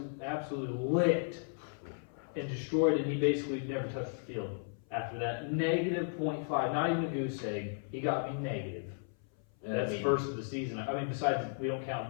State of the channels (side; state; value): right; silent; 55 dB below the other